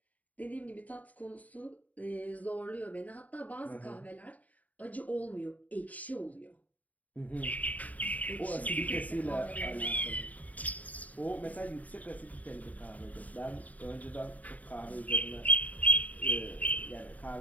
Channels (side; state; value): right; late; 0.073 ms